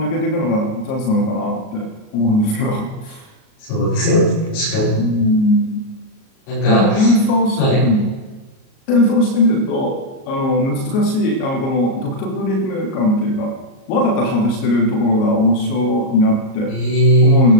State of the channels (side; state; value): right; late; 38 ms